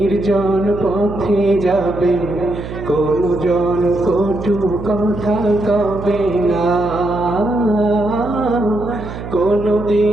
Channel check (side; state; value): right; noise; hum, 9 dB below the sound